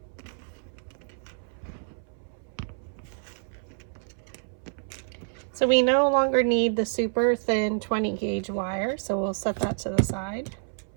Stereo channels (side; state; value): left; silent; 59 dB below the other